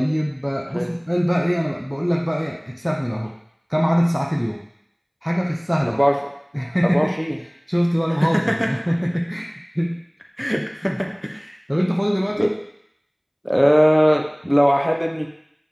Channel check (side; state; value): both; identical; correlation 1.00